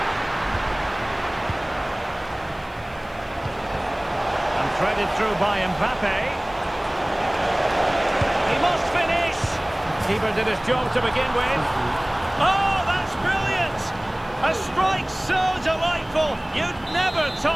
And threaded through by Mbappe. He must finish. Keeper did his job to begin with. Oh, that's brilliant! A strike so delightful, you'd never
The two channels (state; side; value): noise; left; hiss, 29 dB below the sound